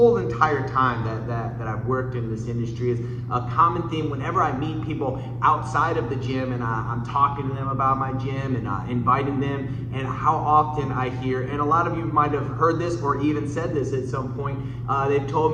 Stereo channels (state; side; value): identical; both; correlation 1.00